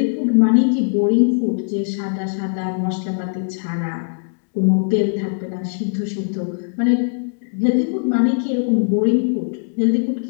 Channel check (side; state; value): right; silent; digital silence